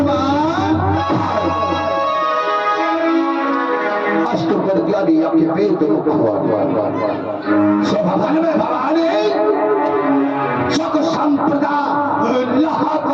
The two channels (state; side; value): identical; both; correlation 1.00